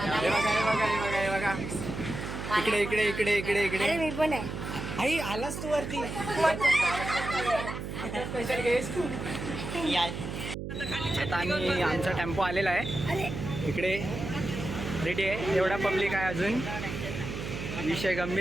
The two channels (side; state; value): right; noise; hum, 6 dB below the sound